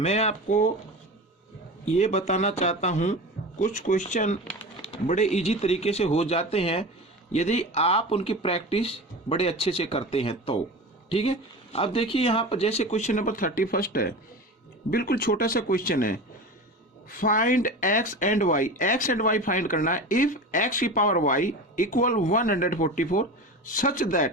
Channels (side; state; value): both; normal; correlation 0.30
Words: आपको ये बताना चाहता हूँ, कुछ क्वेश्चन बड़े इजी तरीके से हो जाते हैं यदि आप उनकी प्रैक्टिस बड़े अच्छे से करते हैं तो। ठीक है, अब देखिए यहाँ पर जैसे क्वेश्चन नंबर 31 है, बिल्कुल छोटा सा क्वेश्चन है। Find X and Y, X and Y find करना है। इफ एक्स की power Y equal 144 such